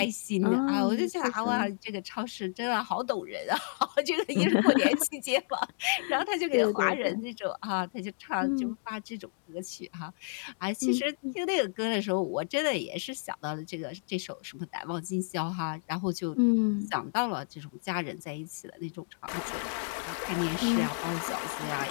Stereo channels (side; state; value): right; silent; digital silence